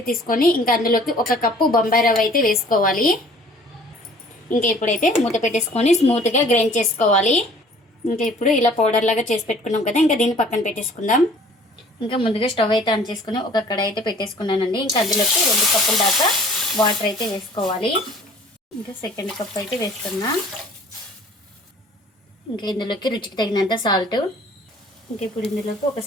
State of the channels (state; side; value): normal; both; correlation 0.52